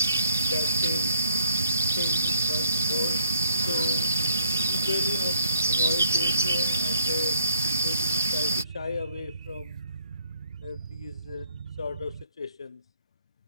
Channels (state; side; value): inverted; both; correlation -0.67